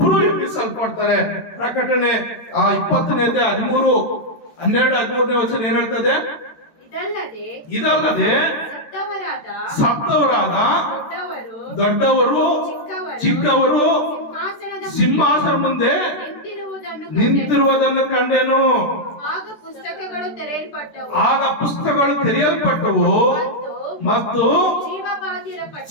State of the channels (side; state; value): right; late; 14 ms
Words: ಎಬ್ಬಿಸಲ್ಪಡ್ತಾರೆ. ಪ್ರಕಟಣೆ 20ನೇ ಅಧ್ಯಾಯ 13-12 ವಚನ ಏನ್ ಹೇಳ್ತದೆ, ಇದಲ್ಲದೆ ಸತ್ತವರಾದ ದೊಡ್ಡವರು ಚಿಕ್ಕವರು ಸಿಂಹಾಸನ ಮುಂದೆ ನಿಂತಿರುವುದನ್ನು ಕಂಡೆನು. ಆಗ ಪುಸ್ತಕಗಳು ತೆರೆಯಲ್ಪಟ್ಟವು ಮತ್ತು